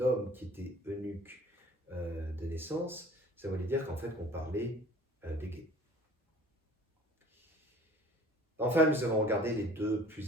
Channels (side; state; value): both; normal; correlation 0.49